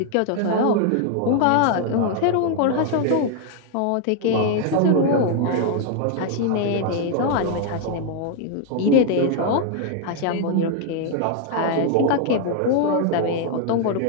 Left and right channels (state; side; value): different; both; correlation 0.00